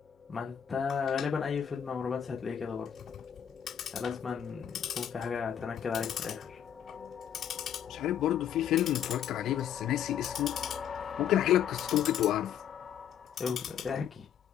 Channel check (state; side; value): quieter; right; 9.1 dB